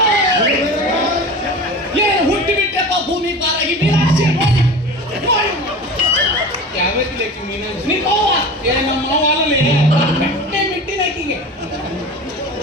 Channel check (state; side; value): normal; both; correlation 0.33